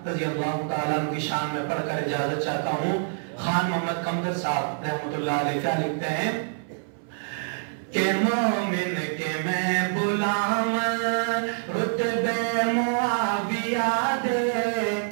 رضی اللہ تعالیٰ عنہ کی شان میں پڑھ کر اجازت چاہتا ہوں. خان محمد قمدر صاحب رحمت اللہ علیہ کیا لکھتے ہیں کہ مومن کے میں غلام رتبے معاویہ دے.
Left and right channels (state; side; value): silent; left; 59 dB below the other